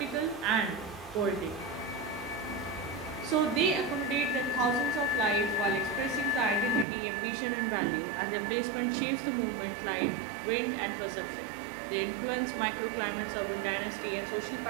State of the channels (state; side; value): drops out; left; at 6.9 s